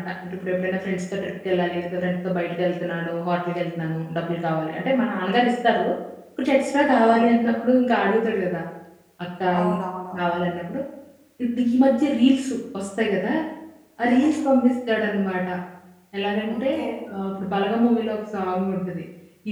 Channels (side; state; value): both; identical; correlation 1.00